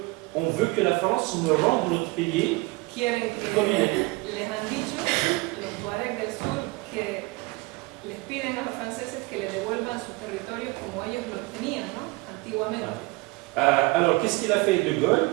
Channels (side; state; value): left; quieter; 24.5 dB